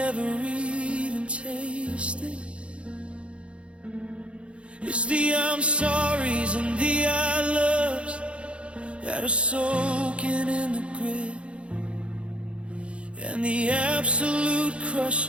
even tasted. It's the I'm sorries and the I loves that are soaking in the grit, and the absolute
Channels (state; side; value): late; left; 0.060 ms